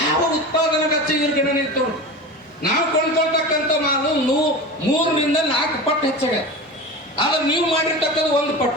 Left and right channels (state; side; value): normal; both; correlation 0.29